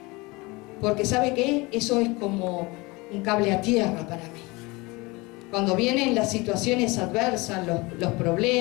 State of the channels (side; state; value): right; quieter; 24.2 dB